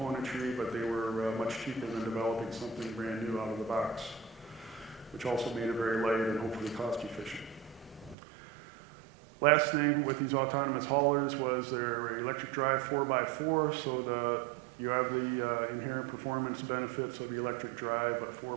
but they were much cheaper than developing something brand new out of the box, which also made it very light and hopefully cost-efficient. Last thing with these autonomous haulers was their electric drive 4x4, so you have the inherent performance benefits of the electric drive at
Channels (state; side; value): drops out; left; at 8.2 s